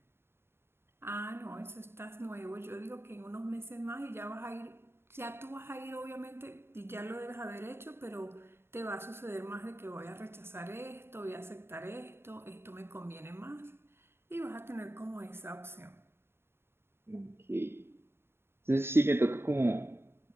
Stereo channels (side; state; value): left; late; 0.11 ms